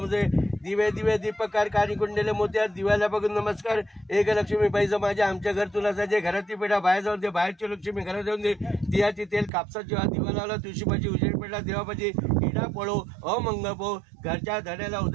दिवे दीपकार कानी कुंडले मोत्या. दिव्याला बघून नमस्कार. एक लक्ष्मी बाईचं माझ्या आमच्या घर तुला जायचे. घरातली पेढा बाहेर जाऊन दे. बाहेरची लक्ष्मी घरात जाऊन दे. दियाची तेल कापसाची दिवा लावला. तुळशीपाची उजेड पेढा देवापाची इडा पळो अमंग पो. घरच्या धड्याला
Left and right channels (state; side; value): drops out; left; at 9.5 s